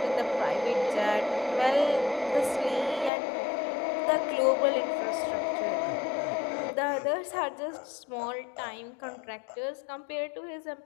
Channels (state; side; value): drops out; right; at 3.1 s